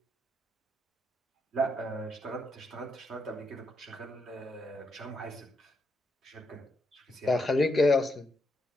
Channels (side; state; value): both; normal; correlation 0.80